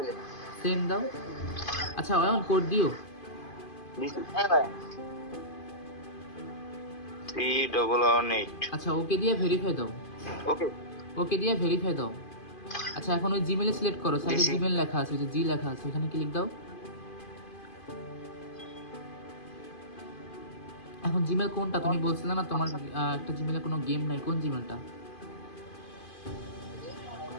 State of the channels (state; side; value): late; right; 2.5 ms